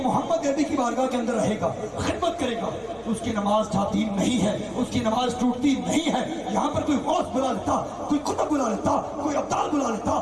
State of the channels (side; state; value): both; identical; correlation 1.00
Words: محمد عربی کی بارگاہ کے اندر رہے گا، خدمت کرے گا، اس کی نماز جاتی نہیں ہے، اس کی نماز ٹوٹتی نہیں ہے۔ یہاں پر کوئی غوث بلا لیتا، کوئی قطب بلا لیتا، کوئی ابدال بلا لیتا،